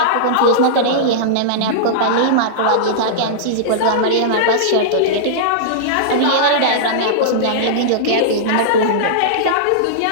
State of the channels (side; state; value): both; different; correlation -0.03